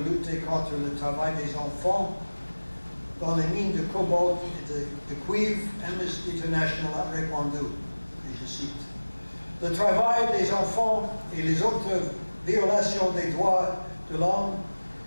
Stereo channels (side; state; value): both; inverted; correlation -1.00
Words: lutter contre le travail des enfants dans les mines de cobalt et de cuivre. Amnesty International a répondu, et je cite, « Le travail des enfants et les autres violations des droits de l'homme